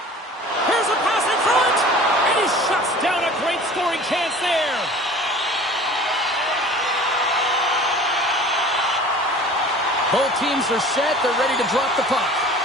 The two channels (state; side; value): normal; both; correlation 0.44